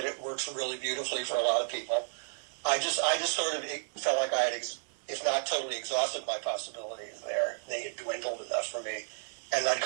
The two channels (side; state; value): left; silent; digital silence